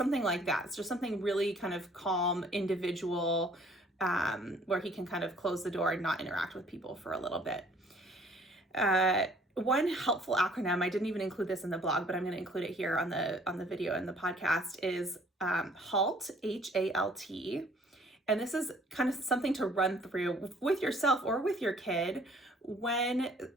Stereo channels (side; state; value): both; normal; correlation 0.58